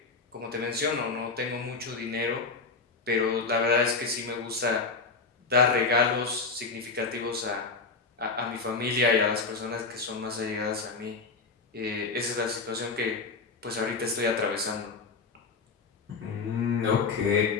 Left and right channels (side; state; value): right; quieter; 4.3 dB